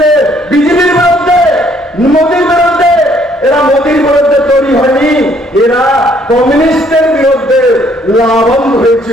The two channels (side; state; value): both; normal; correlation 0.64